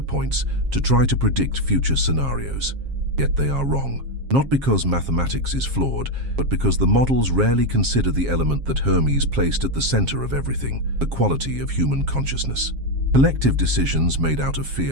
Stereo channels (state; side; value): late; left; 7.4 ms